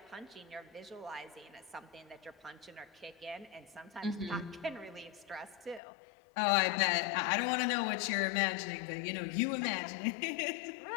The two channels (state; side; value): drops out; right; at 5.8 s